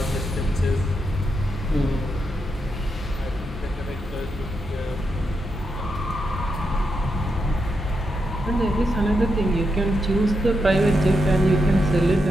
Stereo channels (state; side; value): normal; both; correlation 0.84